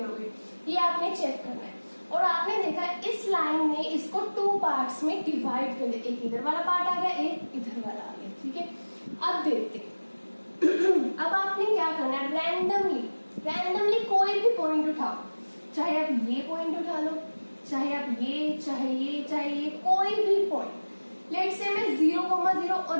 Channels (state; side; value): inverted; both; correlation -1.00